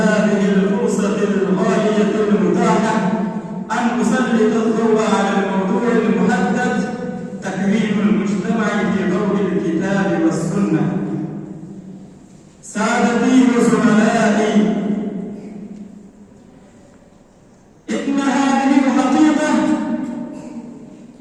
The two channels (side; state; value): both; identical; correlation 1.00